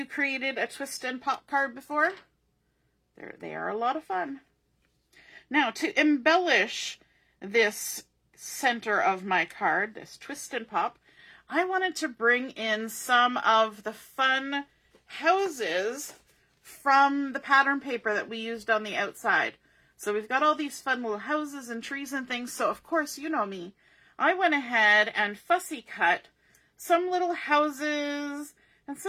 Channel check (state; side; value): identical; both; correlation 1.00